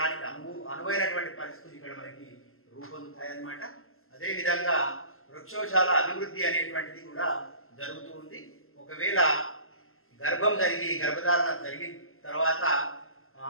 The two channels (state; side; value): late; right; 0.62 ms